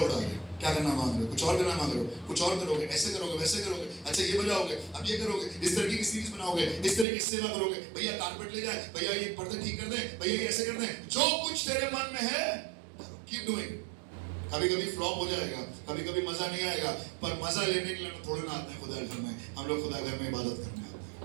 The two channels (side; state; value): left; drops out; at 7.1 s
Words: उड़ा के। क्या करना मांग रहे हो? कुछ और करना मांग रहे हो? कुछ और करोगे, ऐसे करोगे, वैसे करोगे, अच्छा ये बजाओगे, अब ये करोगे, इस तरीके की सीरीज बनाओगे, इस तरीके की सेवा करोगे, भैया कारपेट ले जाए, भैया ये पर्दे ठीक कर दें, भैया ये ऐसे कर दें। जो कुछ तेरे मन में है कीप डूइंग। कभी कभी फ्लॉप हो जाएगा, कभी कभी मजा नहीं आएगा, पर मजा लेने के लिए थोड़े ना आते हैं खुदा घर में। हम लोग खुदा घर में इबादत करने आते